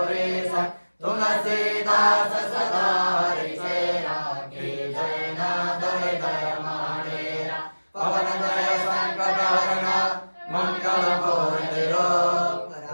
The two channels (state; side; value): inverted; both; correlation -1.00